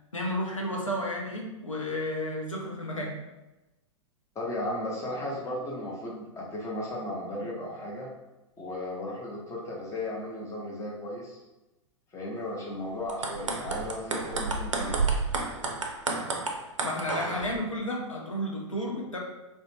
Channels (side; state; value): both; normal; correlation -0.06